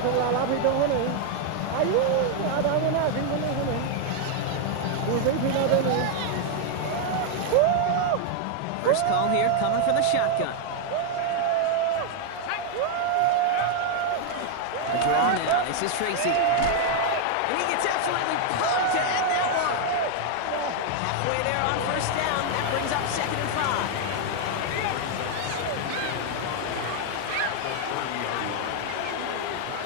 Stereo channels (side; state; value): both; different; correlation 0.00